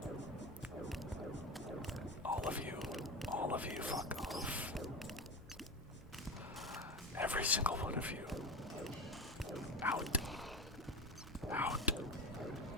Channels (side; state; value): both; normal; correlation 0.23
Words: All of you, fuck off. Every single one of you. Out. Out.